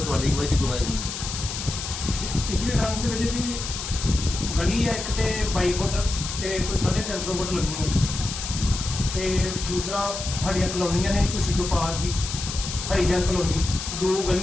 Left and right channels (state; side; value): noise; left; hiss, 6 dB below the sound